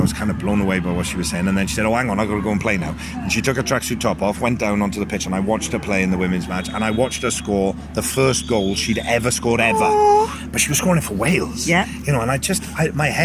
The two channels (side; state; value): both; identical; correlation 1.00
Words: was kind of blown away by what she was saying. And then she said, oh, hang on, I've got to go and play now. And she took her tracksuit top off, went down onto the pitch, and I watched her play in the women's match. And I watched her score the first goal she'd ever scored ever. Aww. But she was scoring it for Wales. Yeah. And my